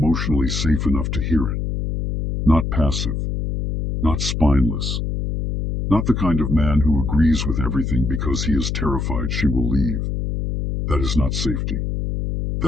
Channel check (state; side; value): noise; left; hum, 2 dB below the sound